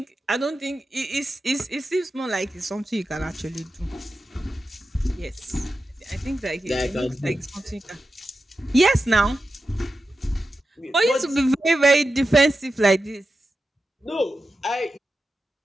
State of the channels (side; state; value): both; normal; correlation 0.91